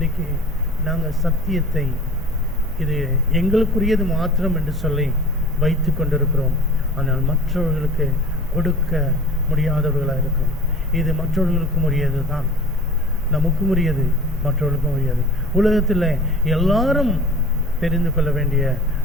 நாங்கள் சத்தியத்தை இது எங்களுக்குரியது மாத்திரம் என்று சொல்லி வைத்து கொண்டிருக்கிறோம். ஆனால் மற்றவர்களுக்கு கொடுக்க முடியாதவர்களாக இருக்கிறோம். இது மற்றவர்களுக்கும் உரியது தான், நமக்கும் உரியது, மற்றவர்களுக்கும் உரியது. உலகத்தில் எல்லாரும் தெரிந்து கொள்ள வேண்டிய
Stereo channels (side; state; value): both; normal; correlation 0.42